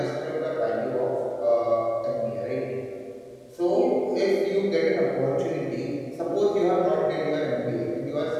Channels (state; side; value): identical; both; correlation 1.00